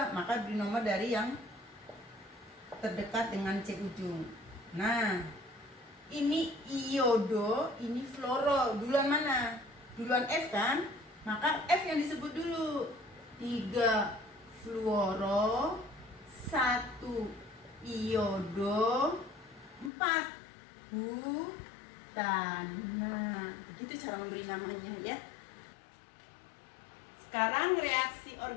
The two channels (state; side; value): drops out; right; at 19.9 s